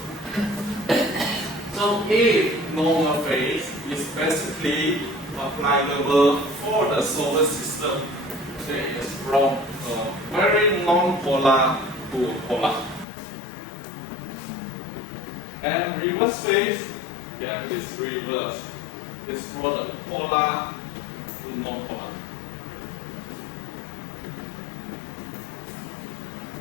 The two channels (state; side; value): drops out; right; at 13.1 s